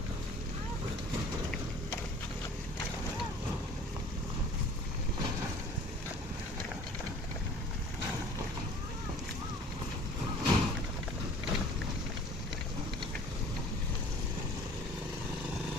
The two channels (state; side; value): normal; both; correlation 0.48